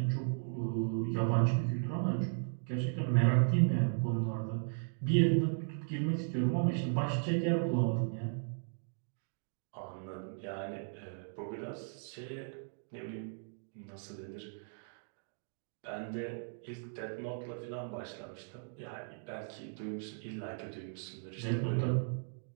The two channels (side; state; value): left; silent; digital silence